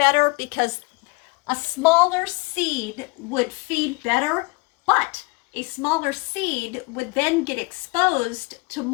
because a smaller seed would feed better, but a smaller seed would then get exposed to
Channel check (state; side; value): quieter; right; 26.1 dB